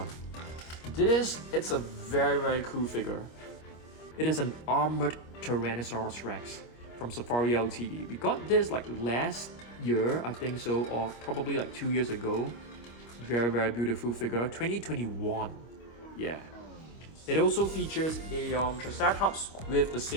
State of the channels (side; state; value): right; late; 25 ms